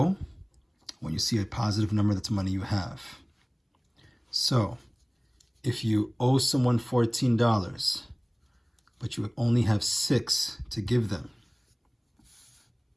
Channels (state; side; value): identical; both; correlation 1.00